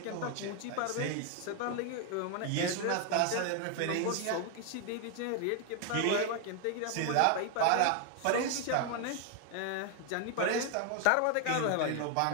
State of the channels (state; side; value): different; both; correlation 0.00